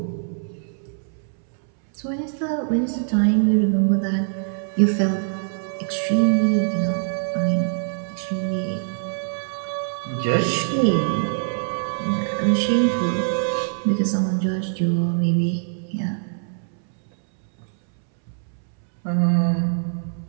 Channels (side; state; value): left; silent; 63 dB below the other